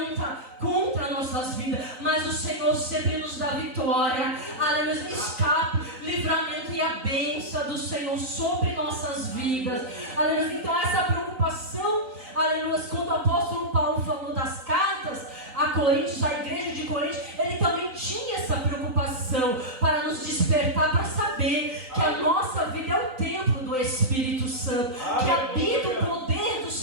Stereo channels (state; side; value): late; left; 3.9 ms